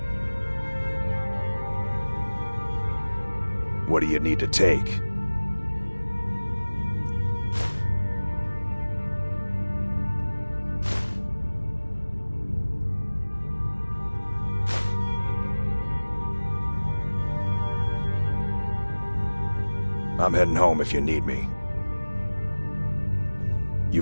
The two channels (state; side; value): inverted; both; correlation -1.00